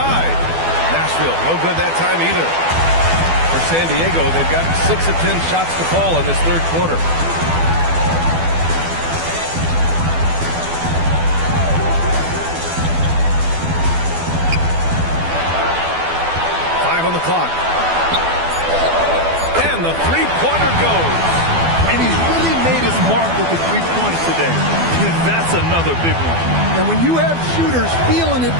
Nashville, no good that time either. For San Diego, they've gotten 6 of 10 shots to fall in this third quarter. On the clock. And the three-pointer goes. And he's really made his mark with the three-pointers today. That's another big one. And when you have shooters feeling it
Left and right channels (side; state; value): left; late; 12 ms